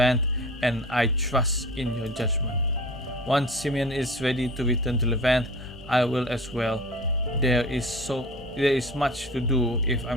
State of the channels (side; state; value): both; normal; correlation 0.39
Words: and I trust in your judgment. Once Simeon is ready to return to Levant, I will as well. There is much to do if